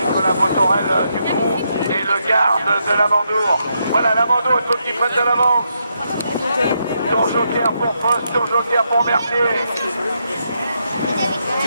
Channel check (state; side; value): inverted; both; correlation -0.80